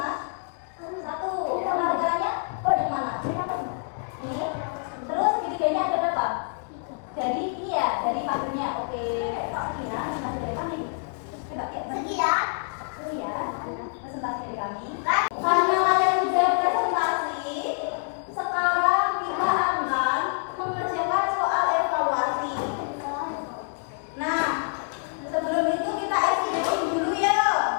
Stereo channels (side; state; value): right; silent; 60 dB below the other